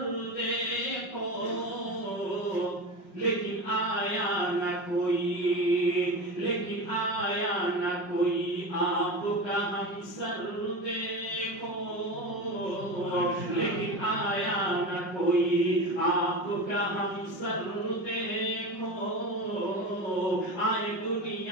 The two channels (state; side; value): late; right; 5.1 ms